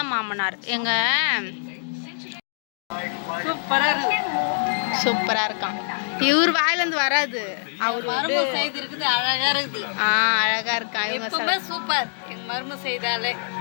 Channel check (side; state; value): right; silent; digital silence